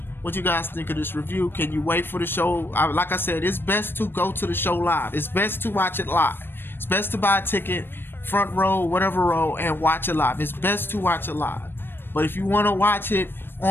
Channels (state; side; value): late; right; 0.10 ms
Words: what you guys think of this review. Can you wait for the show? Like I said, it's best to go to the show live. It's best to watch it live. It's best to buy a ticket, front row, whatever row, and watch it live. It's best to watch it live. But if you want to watch it